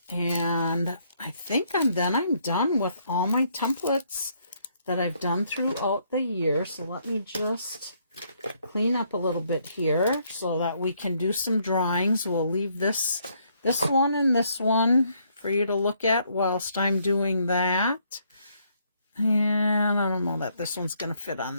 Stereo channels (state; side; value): inverted; both; correlation -0.70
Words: and I think I'm done with all my templates that I've done throughout the year. So let me just clean up a little bit here so that we can do some drawings. We'll leave this one and this one for you to look at whilst I'm doing that. And I don't know that this one's going to fit on